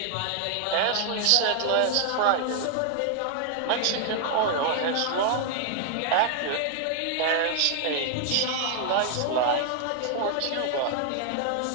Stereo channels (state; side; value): different; both; correlation 0.00